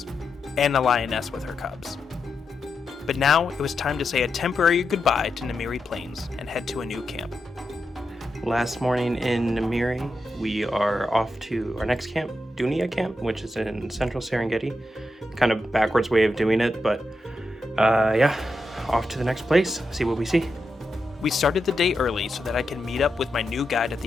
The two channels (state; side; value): normal; both; correlation 0.86